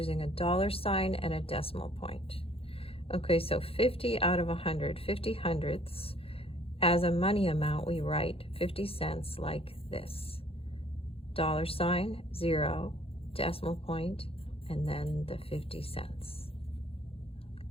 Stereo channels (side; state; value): right; late; 0.27 ms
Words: a dollar sign and a decimal point. Okay, so 50 out of 100, 50 hundredths. As a money amount, we write 50 cents like this. Dollar sign, 0, decimal point, and then the 50 cents.